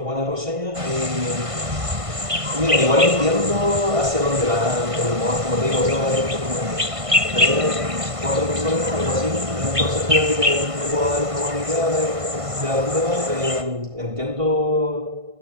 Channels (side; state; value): left; late; 1.5 ms